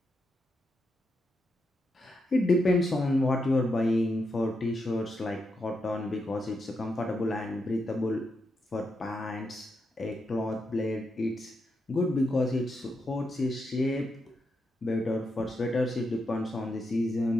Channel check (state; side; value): normal; both; correlation 0.84